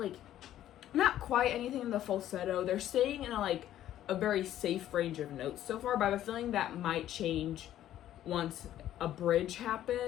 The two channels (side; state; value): right; quieter; 12.3 dB